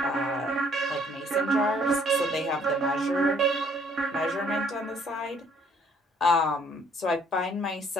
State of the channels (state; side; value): normal; both; correlation 0.62